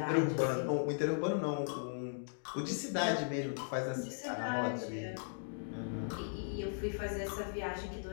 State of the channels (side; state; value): right; silent; digital silence